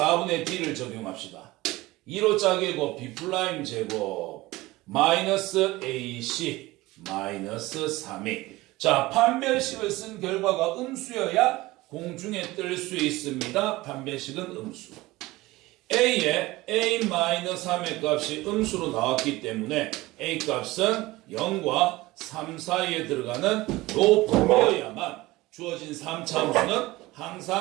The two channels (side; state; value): left; quieter; 19.6 dB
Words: D를 적용합시다. 2로 짜개고 B' 제곱 마이너스 AC 마이너스 3A. 자, 판별식을 쓴 결과가 음수여야 공중에 뜰 수 있습니다. 판별식은 음수. A에 A-3의 값이 음수로 나왔기 때문에 A 값은 0과 3 사이에 들어가는 요 범위여야만 주어진 3차 함수는